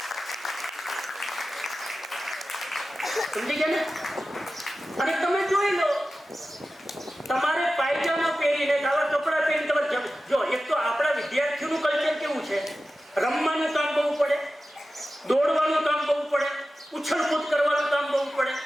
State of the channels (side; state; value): both; normal; correlation 0.94